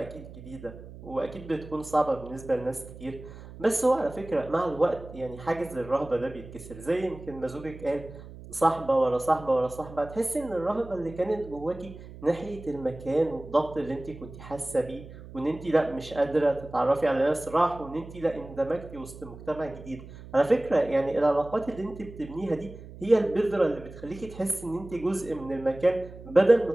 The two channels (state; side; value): noise; right; hum, 15 dB below the sound